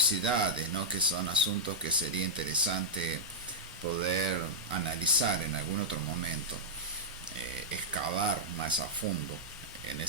¿no?, que são assuntos que seria interessante poder analisar em algum outro momento. Excavar más a fondo en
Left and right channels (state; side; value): normal; both; correlation -0.10